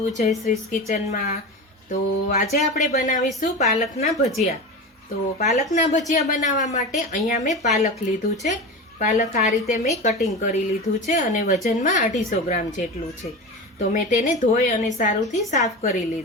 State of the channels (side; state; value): both; normal; correlation 0.26